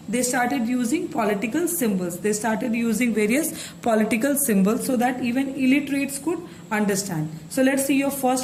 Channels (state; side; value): identical; both; correlation 1.00